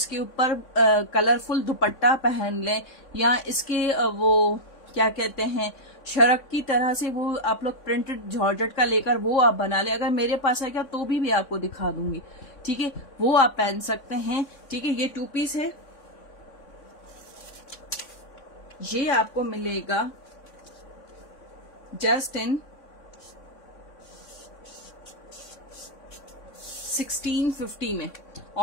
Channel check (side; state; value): right; late; 3.6 ms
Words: ऊपर कलरफुल दुपट्टा पहन लें, या इसके वो क्या कहते हैं शरक की तरह से वो आप लोग प्रिंटेड जॉर्जेट का लेकर वो आप बना लें। अगर मेरे पास आएगा तो भी आपको दिखा दूंगी, ठीक है। वो आप पहन सकते हैं, ठीक है। ये 2 पीस है। ये आपको मिलेगा जस्ट इन 1650 में।